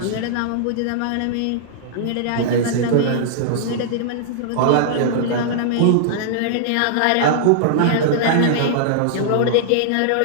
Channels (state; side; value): different; both; correlation -0.01